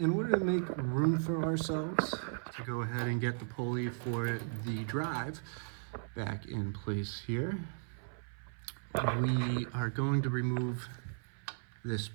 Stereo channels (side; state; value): left; silent; 54 dB below the other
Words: order to make room for ourselves to go ahead and get the pulley for the drive back in place here, we are going to remove this